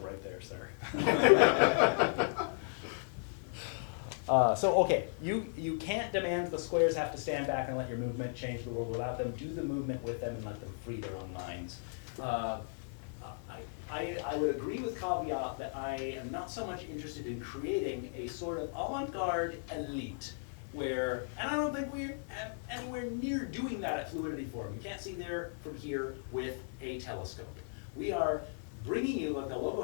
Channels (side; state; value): right; silent; digital silence